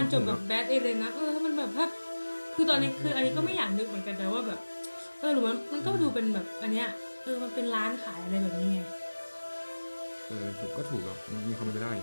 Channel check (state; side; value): inverted; both; correlation -1.00